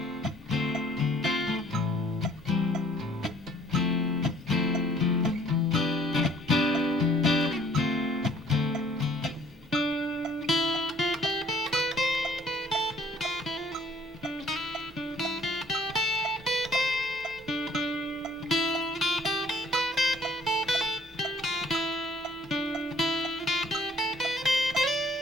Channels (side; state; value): both; normal; correlation 0.59